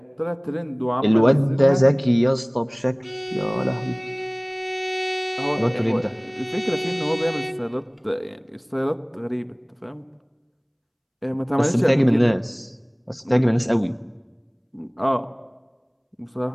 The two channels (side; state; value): both; identical; correlation 1.00